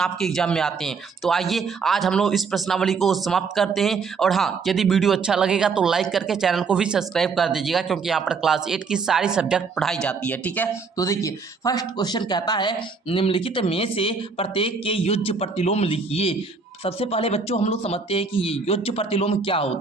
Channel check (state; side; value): quieter; left; 4.9 dB